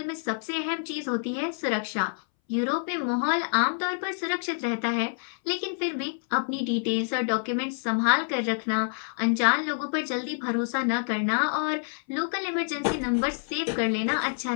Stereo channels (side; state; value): right; silent; 60 dB below the other